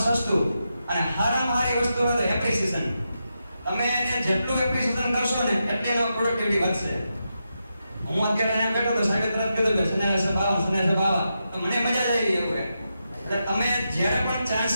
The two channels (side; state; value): both; inverted; correlation -0.87